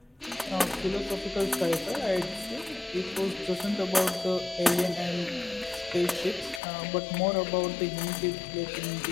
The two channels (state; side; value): drops out; right; at 6.6 s